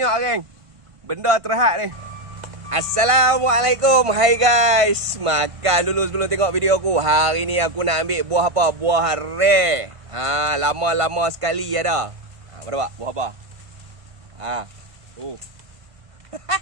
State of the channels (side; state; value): left; late; 1.5 ms